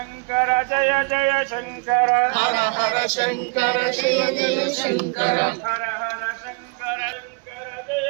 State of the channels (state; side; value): quieter; left; 35.0 dB